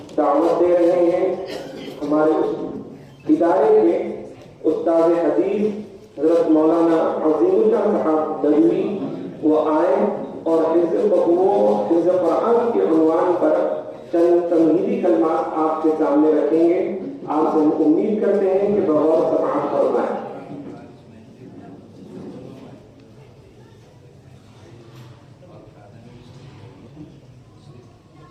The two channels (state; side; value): identical; both; correlation 1.00